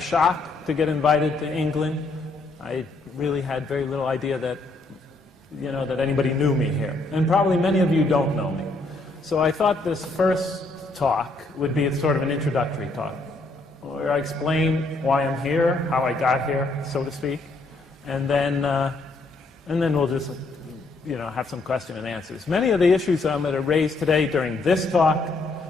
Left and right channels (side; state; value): right; quieter; 3.2 dB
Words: to get invited to England. I really had very little idea that, that anybody knew me here. And probably many of you don't know me. So I thought this first talk would be sort of an introductory talk, where I explain why I'm here, how I got here, so to speak, and then we'll just have some question and answers. Many of the issues I'm going to raise today during this talk,